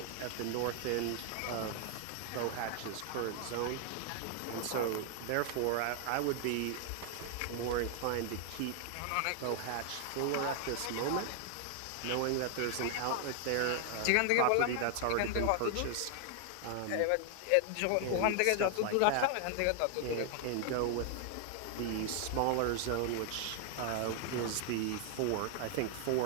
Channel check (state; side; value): different; both; correlation 0.00